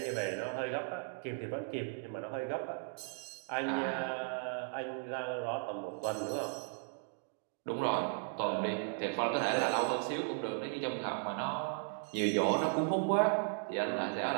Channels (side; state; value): left; silent; 54 dB below the other